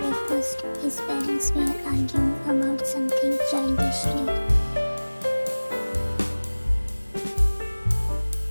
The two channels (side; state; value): both; inverted; correlation -1.00